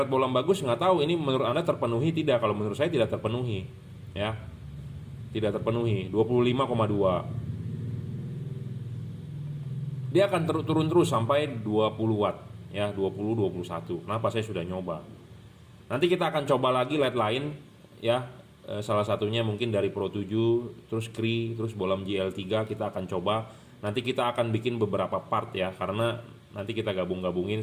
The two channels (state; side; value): identical; both; correlation 1.00